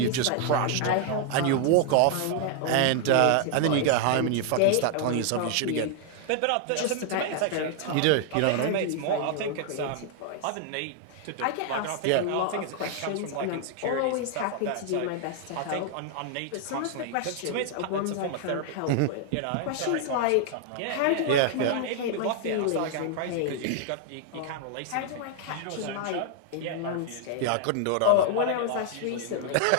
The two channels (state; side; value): different; both; correlation 0.00